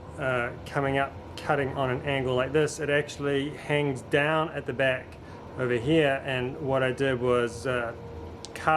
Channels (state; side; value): identical; both; correlation 1.00